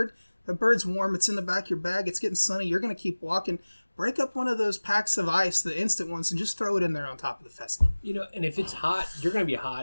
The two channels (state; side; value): inverted; both; correlation -1.00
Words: the bird's warm, it's in the back of your bag, it's getting sunny, you're going to keep walking. Break up one of those packs of ice, the instant ones, and just throw it in there on top of the pheasant. And if it's hot, you're going to be